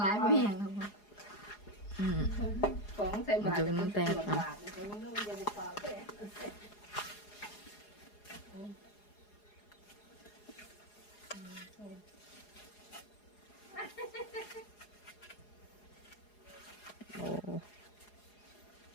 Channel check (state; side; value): late; right; 4.8 ms